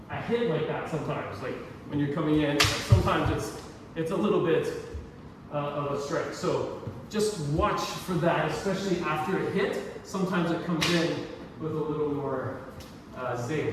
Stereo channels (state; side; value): identical; both; correlation 1.00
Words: hit like that sometimes. Like when you're coming in, sometimes it's a little bit of a strike. So just watch for that, especially after a hit. Sometimes it comes in with a little more